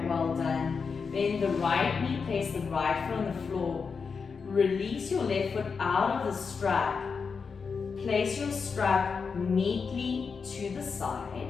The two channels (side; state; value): right; quieter; 5.4 dB